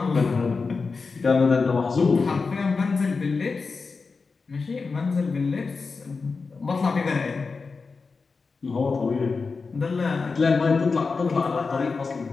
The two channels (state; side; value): quieter; right; 4.5 dB